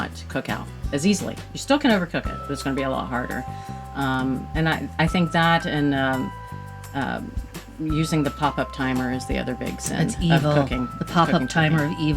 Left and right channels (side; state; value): both; identical; correlation 1.00